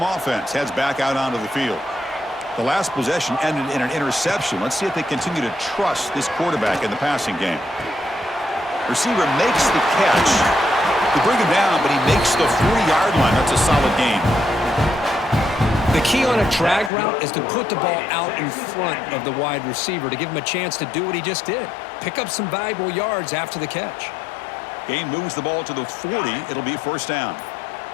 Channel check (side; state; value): right; drops out; at 16.9 s